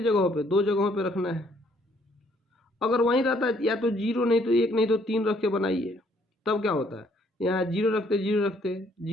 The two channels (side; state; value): both; normal; correlation 0.66